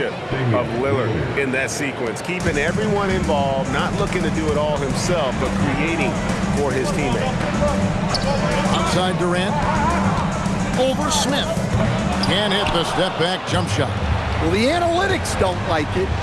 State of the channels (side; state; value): both; identical; correlation 1.00